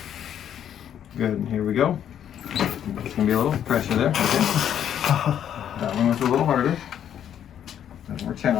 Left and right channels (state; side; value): quieter; right; 9.7 dB